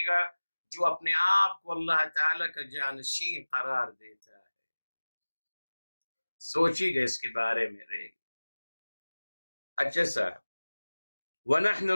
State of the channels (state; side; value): inverted; both; correlation -1.00